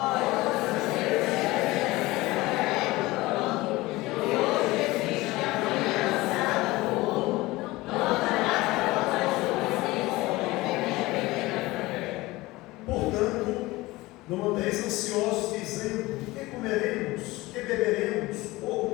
Portanto, não andeis ansiosos, dizendo: que comeremos, que beberemos, ou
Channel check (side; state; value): right; quieter; 20.0 dB